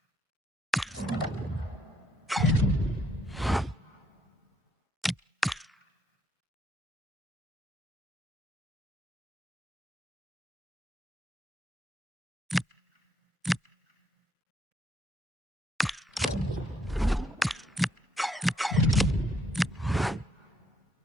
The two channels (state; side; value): normal; both; correlation 0.72